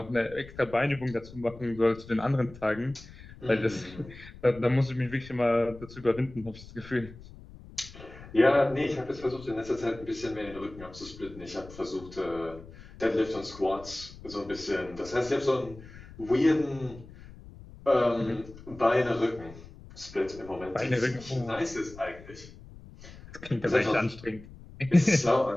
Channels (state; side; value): noise; left; rumble, 18 dB below the sound